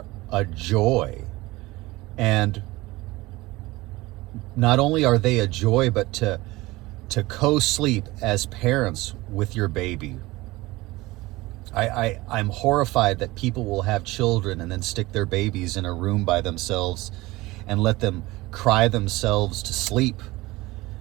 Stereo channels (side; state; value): left; quieter; 20.2 dB